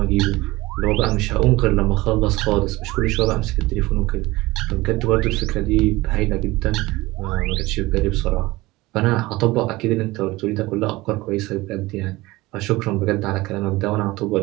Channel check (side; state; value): left; quieter; 20.1 dB